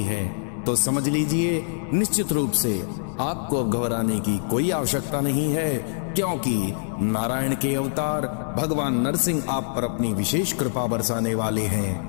है, तो समझ लीजिए निश्चित रूप से आपको अब घबराने की कोई आवश्यकता नहीं है, क्योंकि नारायण के अवतार भगवान नरसिंह आप पर अपनी विशेष कृपा बरसाने वाले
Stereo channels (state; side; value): silent; right; digital silence